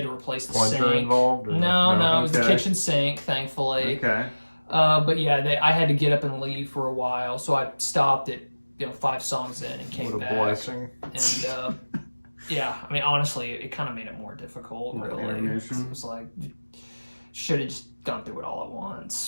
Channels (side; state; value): both; inverted; correlation -1.00